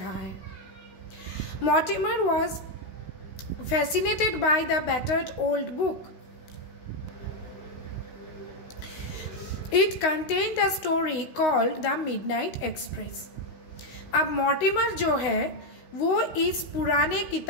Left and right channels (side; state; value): right; late; 16 ms